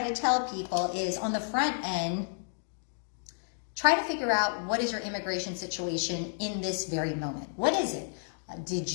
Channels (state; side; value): silent; right; digital silence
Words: to tell people is, on the front end, try to figure out what is your immigration situation in this very moment. What is it? Did